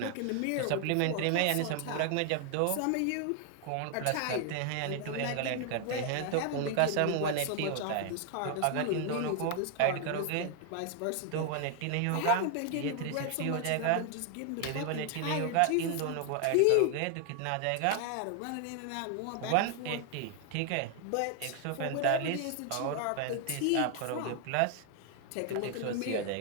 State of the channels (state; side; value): different; both; correlation 0.00